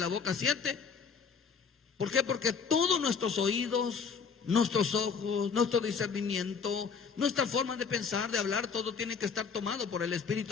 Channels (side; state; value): right; quieter; 5.9 dB